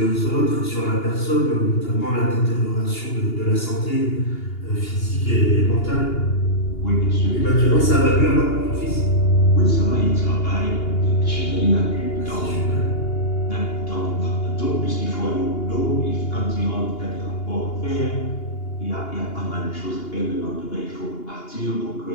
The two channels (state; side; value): late; right; 2.8 ms